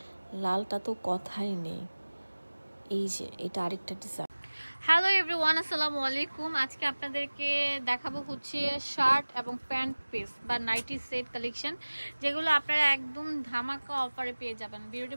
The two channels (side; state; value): both; inverted; correlation -1.00